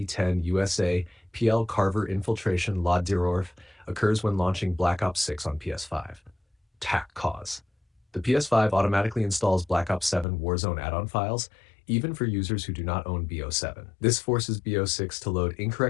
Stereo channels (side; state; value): right; drops out; at 10.2 s